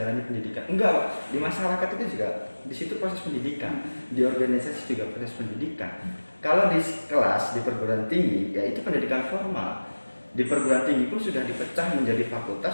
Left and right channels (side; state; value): both; inverted; correlation -1.00